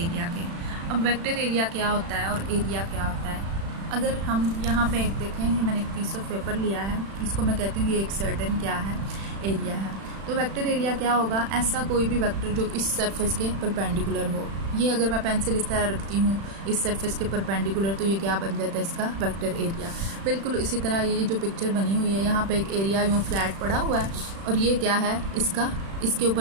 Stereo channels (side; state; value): left; late; 36 ms